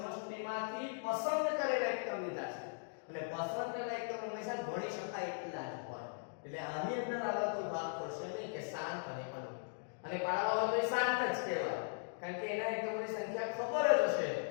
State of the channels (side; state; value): right; silent; digital silence